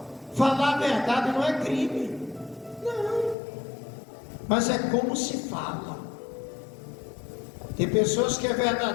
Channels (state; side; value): drops out; right; at 3.4 s